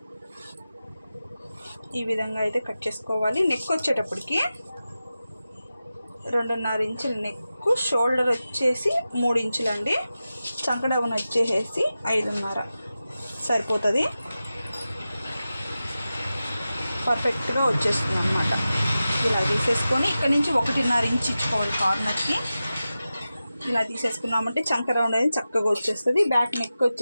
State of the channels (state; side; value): inverted; both; correlation -0.94